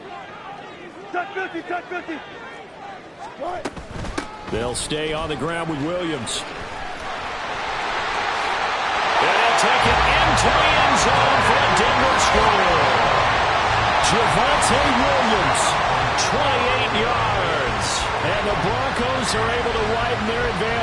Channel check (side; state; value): both; identical; correlation 1.00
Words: Touch 50, touch 50. They'll stay on the ground with Williams. And they'll take it into the end zone for a Denver score. Javonte Williams, 28 yards. and the Broncos are able to widen their